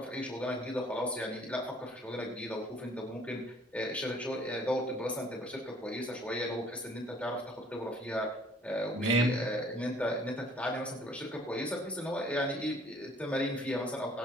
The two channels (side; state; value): both; normal; correlation 0.57